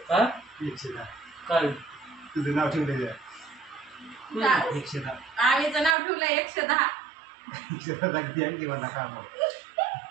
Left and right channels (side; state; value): left; drops out; at 6.0 s